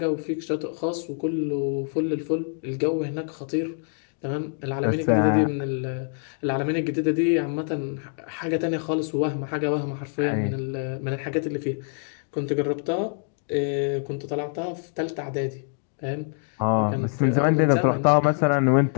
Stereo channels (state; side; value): silent; right; 61 dB below the other